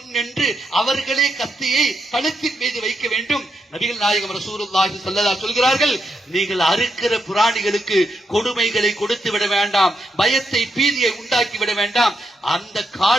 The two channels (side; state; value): both; normal; correlation 0.82